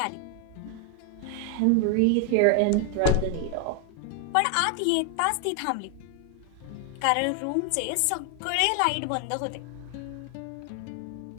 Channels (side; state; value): both; different; correlation 0.00